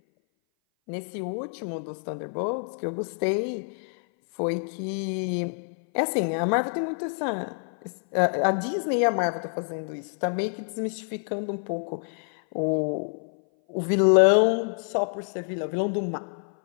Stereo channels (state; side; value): silent; right; 58 dB below the other